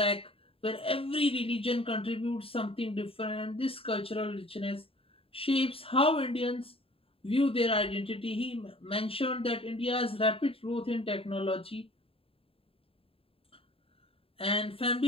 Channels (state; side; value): late; right; 0.27 ms